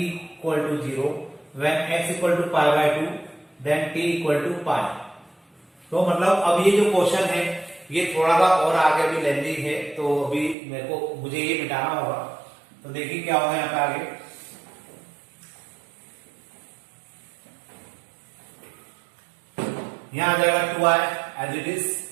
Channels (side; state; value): left; drops out; at 10.6 s